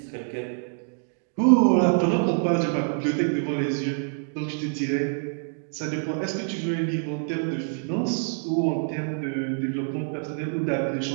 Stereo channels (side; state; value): left; silent; 61 dB below the other